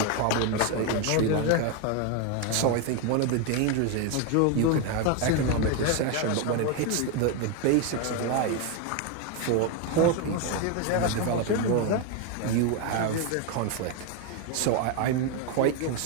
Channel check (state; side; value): different; both; correlation 0.02